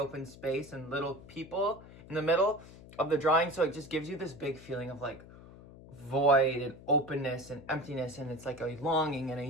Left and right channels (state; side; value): noise; left; hum, 18 dB below the sound